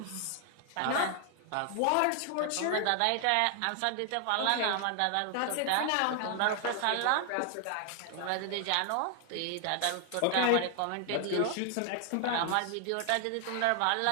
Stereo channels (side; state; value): both; different; correlation 0.00